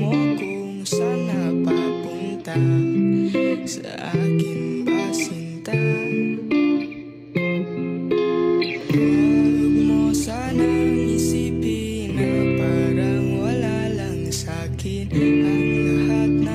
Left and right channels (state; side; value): identical; both; correlation 1.00